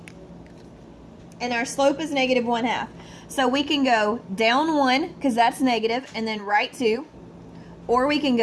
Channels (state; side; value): identical; both; correlation 1.00